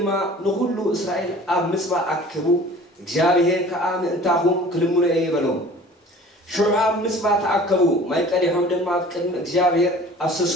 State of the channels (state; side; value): normal; both; correlation 0.46